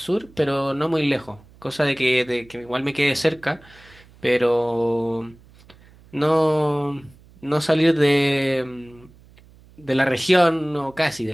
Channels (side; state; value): right; noise; hum, 26 dB below the sound